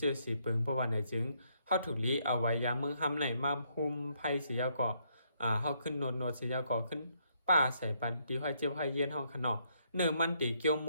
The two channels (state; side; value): inverted; both; correlation -0.72